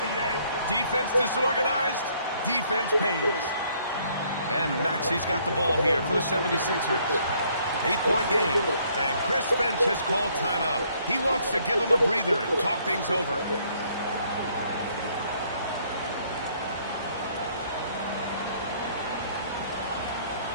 B.A. Defense disorganized. Defense pays. And Maxey's got the ball here for the 76ers. 8-point game. And Chris Finch has called timeout. He wants to give him a breather and talk things over.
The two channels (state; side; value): inverted; both; correlation -0.65